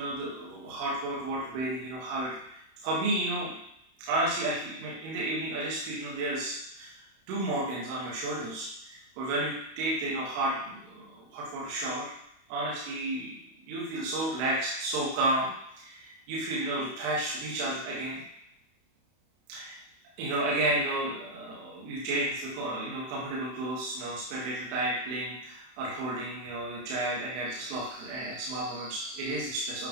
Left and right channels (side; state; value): left; late; 31 ms